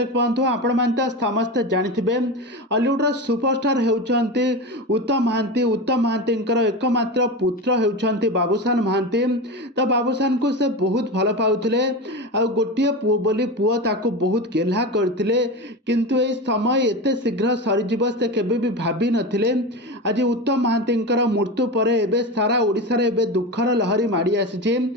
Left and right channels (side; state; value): both; normal; correlation 0.23